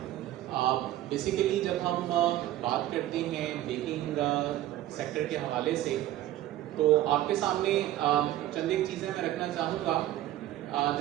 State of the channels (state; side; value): quieter; left; 14.0 dB